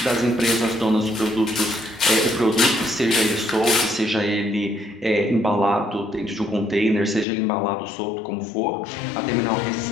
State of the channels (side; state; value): right; drops out; at 7.2 s